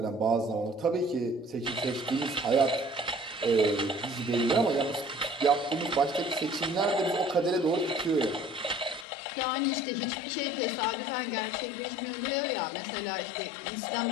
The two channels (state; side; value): drops out; right; at 9.1 s